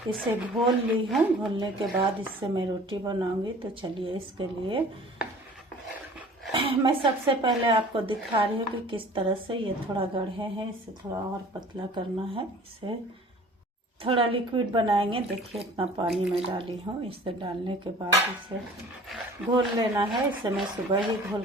इसे घोल ली हूँ। घोलने के बाद इससे मैं रोटी बनाऊँगी। तो चलिए इसके लिए मैं सबसे पहले आपको दिखा रही हूँ कि किस तरह से ये थोड़ा गढ़े हैं, इसे थोड़ा और पतला करना है। इसे थोड़ा लिक्विड बनाएंगे। देखिए इतना पानी मैं डाली हूँ। इसे डालने के बाद इसे घोल लेना है। इसे मैं सुबह ही घोल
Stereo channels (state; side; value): normal; both; correlation 0.47